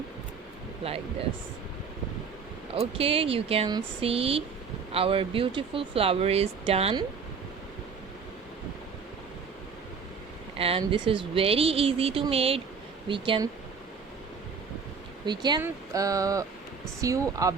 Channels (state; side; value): quieter; left; 5.7 dB